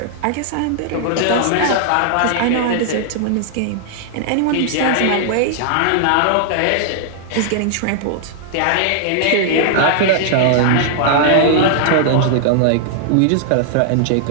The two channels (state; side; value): different; both; correlation -0.01